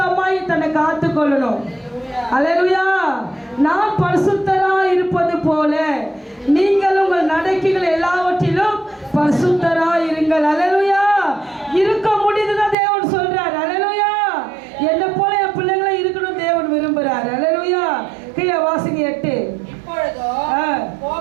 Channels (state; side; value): drops out; left; at 12.8 s